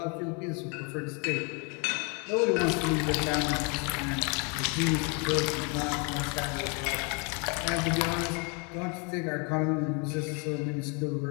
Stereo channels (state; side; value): quieter; right; 34.5 dB